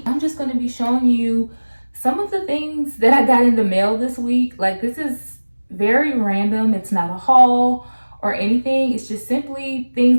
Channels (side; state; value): both; inverted; correlation -1.00